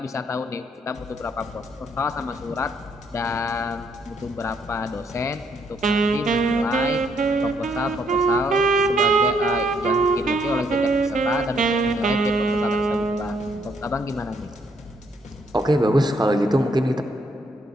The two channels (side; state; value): both; normal; correlation 0.71